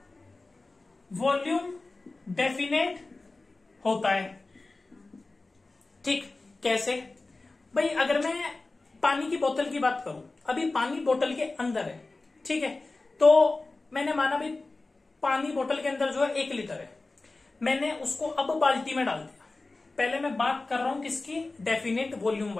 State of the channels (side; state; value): right; quieter; 3.3 dB